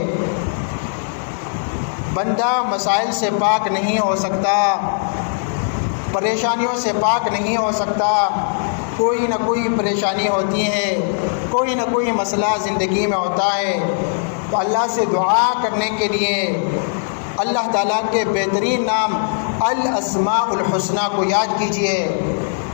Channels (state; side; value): silent; right; 66 dB below the other